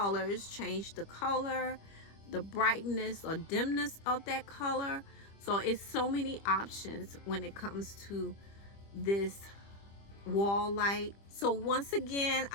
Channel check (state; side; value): late; right; 25 ms